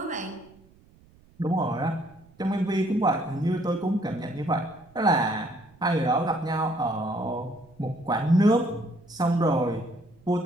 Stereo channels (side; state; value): right; noise; rumble, 28 dB below the sound